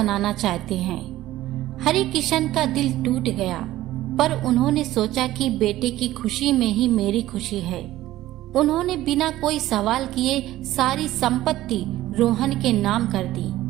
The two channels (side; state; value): left; quieter; 15.3 dB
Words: चाहते हैं। हरि किशन का दिल टूट गया, पर उन्होंने सोचा कि बेटे की खुशी में ही मेरी खुशी है। उन्होंने बिना कोई सवाल किए सारी संपत्ति रोहन के नाम कर दी।